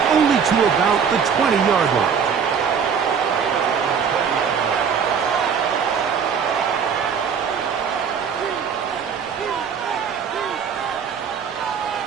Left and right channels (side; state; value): left; quieter; 6.8 dB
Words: only to about the 20-yard line.